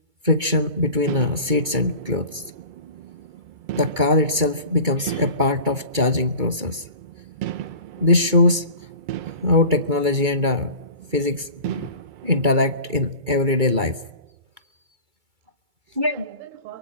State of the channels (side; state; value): left; late; 2.3 ms